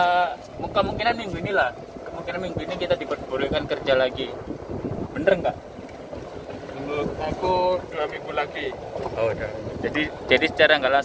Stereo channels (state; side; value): identical; both; correlation 1.00